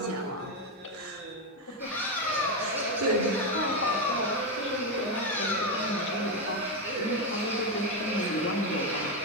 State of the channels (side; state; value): both; normal; correlation 0.08